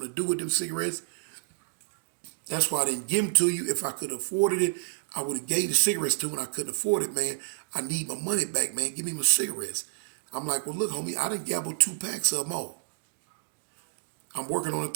to do with them cigarettes. That's why I didn't give them to you. If I could have afforded it, I would have gave the cigarettes to him. I couldn't afford it, man. I need my money back, man. Give me my cigarettes. I'm like, well, look, homie, I didn't gamble 2 packs of them all. I'm working on a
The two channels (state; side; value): silent; left; digital silence